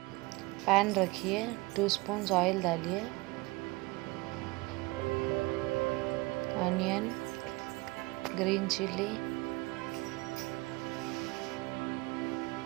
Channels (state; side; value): quieter; left; 23.4 dB